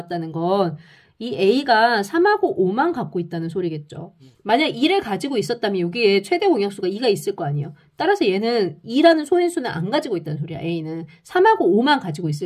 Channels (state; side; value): identical; both; correlation 1.00